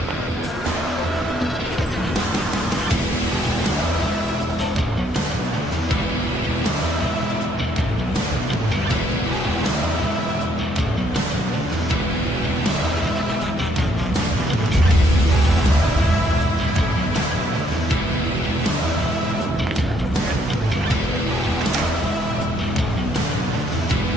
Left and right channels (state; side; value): normal; both; correlation 0.69